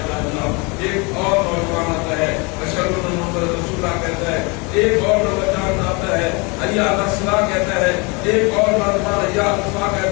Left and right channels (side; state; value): right; quieter; 29.1 dB